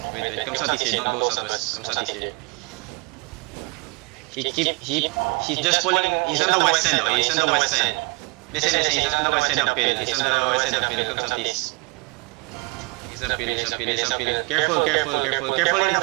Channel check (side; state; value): left; quieter; 28.0 dB